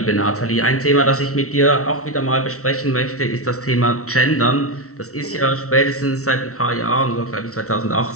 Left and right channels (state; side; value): late; right; 0.64 ms